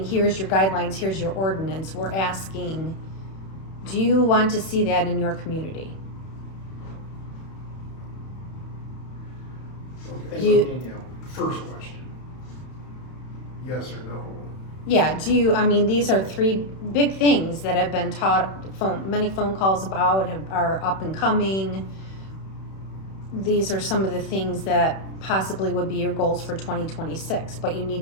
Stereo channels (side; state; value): right; late; 31 ms